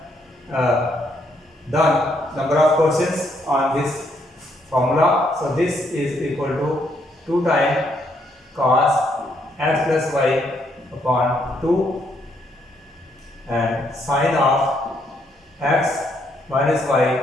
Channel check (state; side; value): normal; both; correlation 0.73